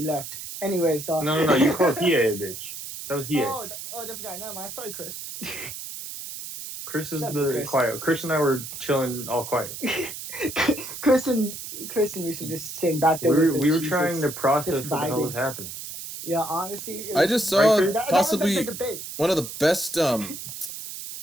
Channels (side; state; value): right; noise; hiss, 9 dB below the sound